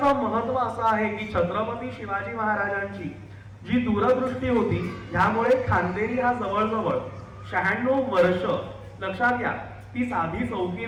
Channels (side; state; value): both; identical; correlation 1.00